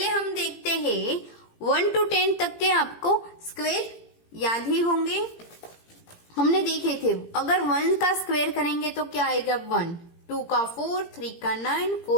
हम देखते हैं 1 to 10 तक के आपको स्क्वायर याद ही होंगे, हमने देखे थे। अगर 1 का स्क्वायर करेंगे तो क्या आएगा? 1, 2 का 4, 3 का 9,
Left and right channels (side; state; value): right; late; 17 ms